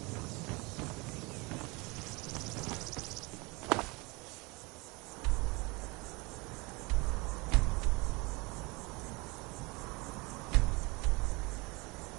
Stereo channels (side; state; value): left; quieter; 26.2 dB